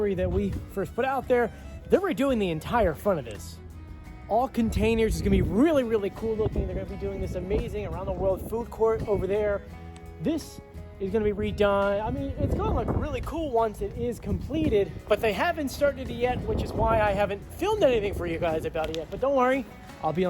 that we first put out there, they were doing the entire front of this. All containers. Is gonna be really, really cool looking. They're gonna be doing this amazing around the world food court over there. This is gonna be redone. I mean, it's gonna look really cool once it is completed, but they haven't started it yet, which is why I haven't filmed anything for you guys about it yet, but don't worry, I'll be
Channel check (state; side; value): identical; both; correlation 1.00